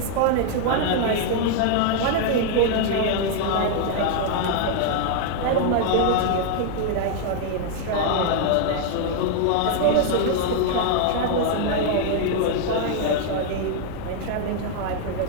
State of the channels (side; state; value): both; different; correlation 0.00